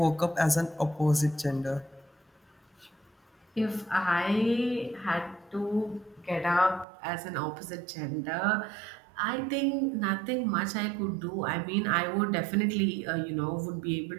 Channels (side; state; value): left; drops out; at 6.9 s